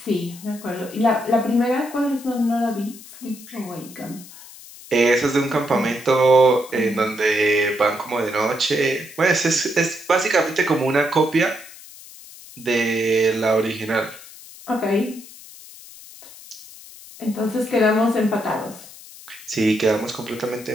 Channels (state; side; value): noise; left; hiss, 18 dB below the sound